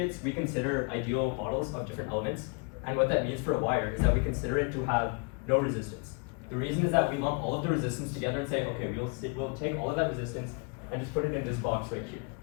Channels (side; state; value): right; quieter; 33.9 dB